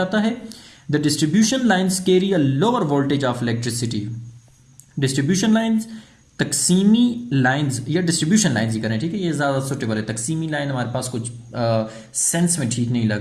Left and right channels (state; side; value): identical; both; correlation 1.00